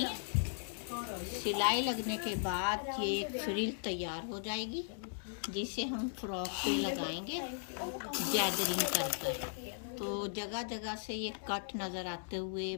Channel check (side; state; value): right; silent; digital silence